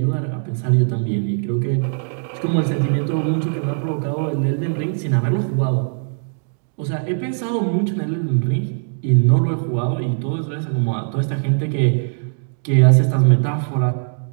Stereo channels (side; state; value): left; silent; digital silence